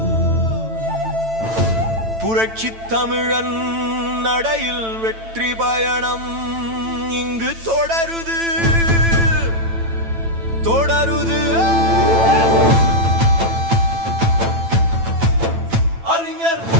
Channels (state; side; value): late; left; 9.0 ms